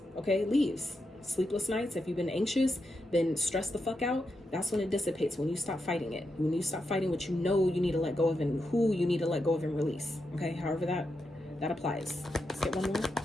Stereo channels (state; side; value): normal; both; correlation 0.86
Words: okay, leaves. Sleepless nights, if you've been anxious, been stressed the fuck out, that's when it dissipates, when you stop fighting it. When you stop fighting what you know you need to let go of and who you need to let go of and release, okay? However that applies. Let's get one more.